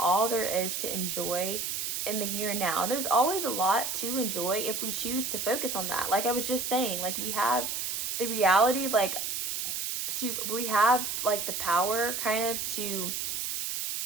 there is to enjoy in the here and now. And there's always a lot to enjoy if we choose to focus on that. Like I was just saying, like we have the reality, like we have like the power kind of to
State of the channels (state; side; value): noise; right; hiss, 2 dB below the sound